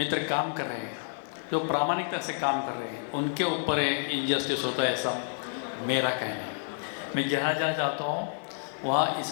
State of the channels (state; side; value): silent; right; digital silence